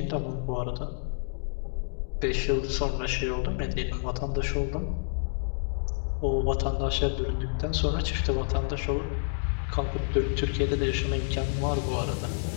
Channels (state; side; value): silent; right; digital silence